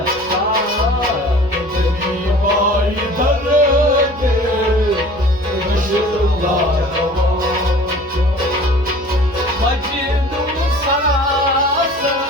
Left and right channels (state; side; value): noise; right; hum, 21 dB below the sound